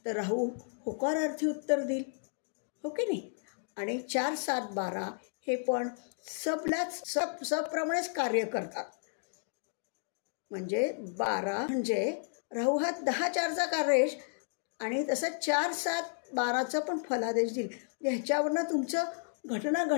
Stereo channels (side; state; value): right; silent; digital silence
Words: तर राहू होकारार्थी उत्तर देईल. हो की नाही. आणि 4, 7, 12 हे पण सबप्रमाणेच कार्य करतात. म्हणजे 12 म्हणजे राहू हा 10, 4चा कार्येश, आणि तसं 4, 7, 12चा पण फलादेश देईल. ह्याच्यावरनं तुमचं घटना